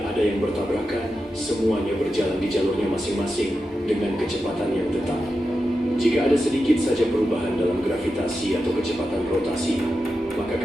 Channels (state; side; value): normal; both; correlation 0.90